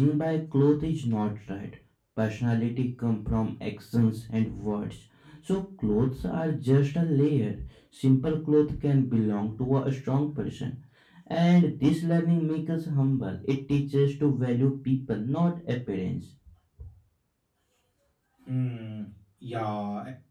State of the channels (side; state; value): both; identical; correlation 1.00